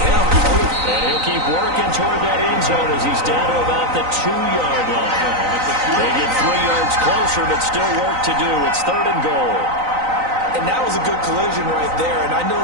him. And he'll keep working toward that end zone as he's down to about the 2-yard line. They get 3 yards closer, but still work to do. It's third and goal. And that was a good collision right there. And I know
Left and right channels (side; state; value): left; late; 3.9 ms